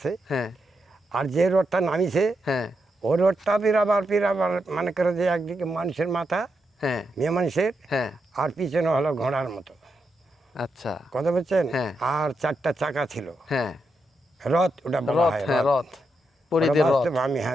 হ্যাঁ। আর যে রোডটা নামিছে, হ্যাঁ। ও রোডটা পিরাবার মানে করে যে একদিকে মানুষের মাথা, হ্যাঁ। মেয়ে মানুষের, হ্যাঁ। আর পিছনে হলো ঘোড়ার মতো, আচ্ছা। কথা বলছেন। হ্যাঁ। আর 4টা চাকা ছিল, হ্যাঁ। রথ ওটা বলা রথ, হয়, হ্যাঁ, রথ। রথ, ওটা পরীদের রথ। বাস্তব, আমি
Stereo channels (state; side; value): normal; both; correlation 0.84